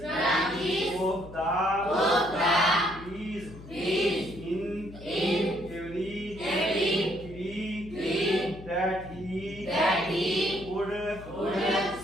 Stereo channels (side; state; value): left; noise; hum, 16 dB below the sound